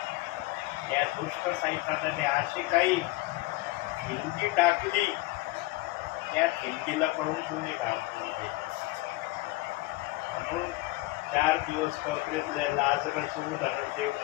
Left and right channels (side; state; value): right; quieter; 19.8 dB